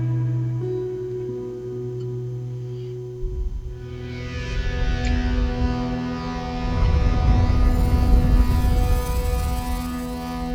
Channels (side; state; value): both; identical; correlation 1.00